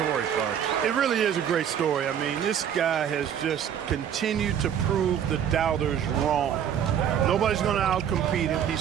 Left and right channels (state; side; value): quieter; left; 9.0 dB